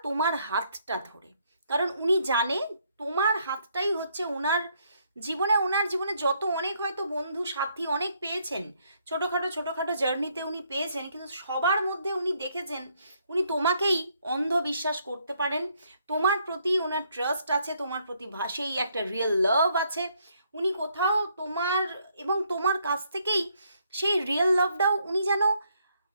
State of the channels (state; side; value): inverted; both; correlation -0.71